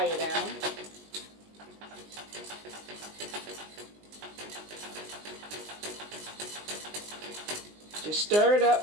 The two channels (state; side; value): late; left; 19 ms